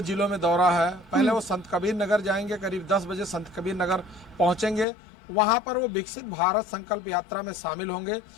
जिलों में दौरा है। पहले वो संत कबीर नगर जाएंगे, करीब 10 बजे संत कबीर नगर पहुंचेंगे। वहां पर वो विकसित भारत संकल्प यात्रा में शामिल होंगे।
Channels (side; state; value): right; drops out; at 4.9 s